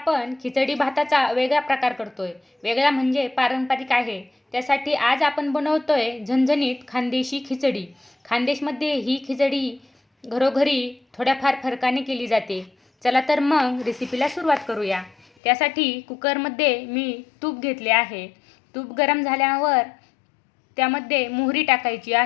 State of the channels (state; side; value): drops out; right; at 15.2 s